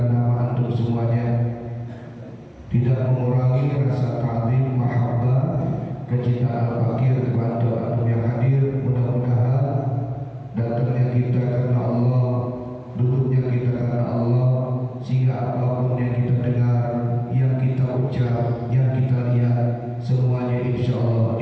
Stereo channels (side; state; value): both; identical; correlation 1.00